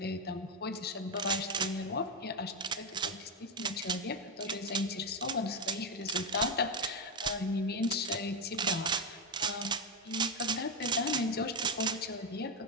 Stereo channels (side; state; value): both; normal; correlation 0.06